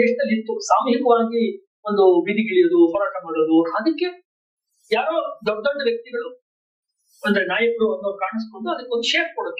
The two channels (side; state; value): both; identical; correlation 1.00